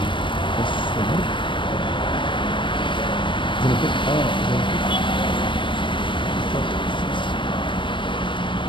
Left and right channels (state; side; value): late; right; 0.24 ms